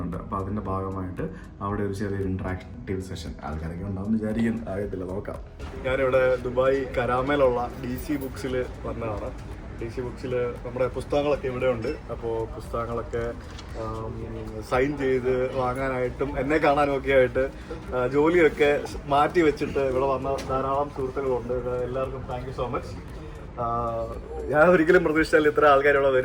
അപ്പോൾ അതിൻ്റെ ഭാഗമായിട്ട് അവിടെ ഒരു ചെറിയൊരു ഇൻട്രാക്റ്റീവ് സെഷൻ ആൾക്കാരൊക്കെ ഉണ്ടാവും വിചാരിക്കാൻ ആകത്തില്ല, നോക്കാം. ഞാനിവിടെ ദുബായ് കരാമയിലുള്ള DC ബുക്സിൽ വന്നതാണ്. DC ബുക്സിൽ നമ്മുടെ പുസ്തകങ്ങളൊക്കെ ഇവിടെ ഉണ്ട്. അപ്പോൾ പുസ്തകങ്ങളൊക്കെ സൈൻ ചെയ്ത് വാങ്ങാനായിട്ടും എന്നെ കാണാനും ഒക്കെ ആയിട്ട് ജോലിയൊക്കെ മാറ്റി വെച്ചിട്ട് ഇവിടെ വന്ന ധാരാളം സുഹൃത്തുക്കളുണ്ട്. എല്ലാവർക്കും താങ്ക് യു സോ മച്ച്. ഞാൻ ഒരിക്കലും പ്രതീക്ഷിച്ചാൽ ഇത്ര ആൾക്കാർ ഇവിടെ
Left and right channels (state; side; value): identical; both; correlation 1.00